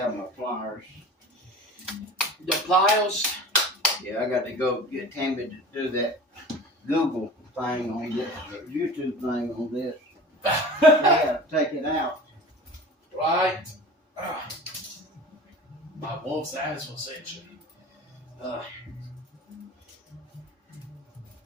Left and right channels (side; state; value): both; normal; correlation 0.38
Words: my pliers. The pliers? Yeah, I got to go get Tammy to do that Google thing on this, or YouTube thing on this. Yeah, take it out. Right. My wolf's ass was itching.